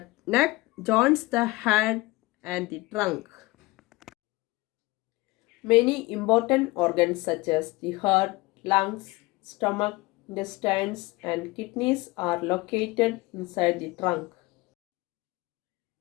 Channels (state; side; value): quieter; right; 21.8 dB